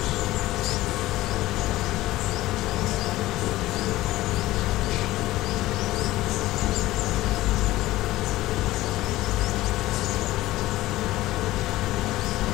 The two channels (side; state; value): right; quieter; 16.8 dB